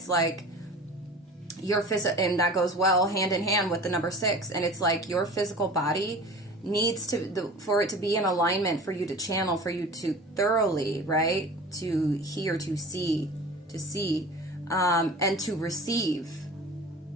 like your and that goes well hand in hand with the number 6, and it's like your physical body needs to, for it to be in alignment, for you to channel, for you to thoroughly, right? To hear, to see, and to receive.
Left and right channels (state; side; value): normal; both; correlation 0.38